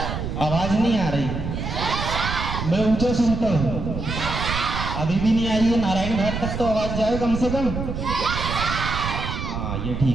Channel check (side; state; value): right; noise; rumble, 5 dB below the sound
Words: आवाज नहीं आ रही, मैं ऊंचा सुनता हूँ। अभी भी नहीं आई है, नारायण घाट तक तो आवाज जाए कम से कम। हाँ, ये